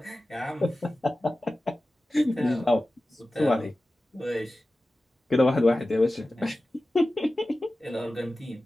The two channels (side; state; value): both; normal; correlation 0.95